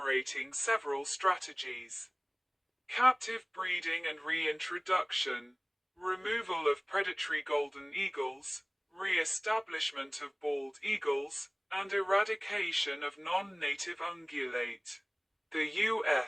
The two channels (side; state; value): both; identical; correlation 1.00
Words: several strategies: captive breeding and reintroduction, removal of predatory golden eagles, re-establishment of bald eagles, and eradication of non-native ungulate. The